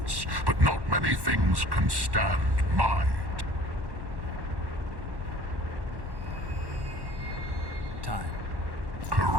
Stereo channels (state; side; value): late; left; 1.1 ms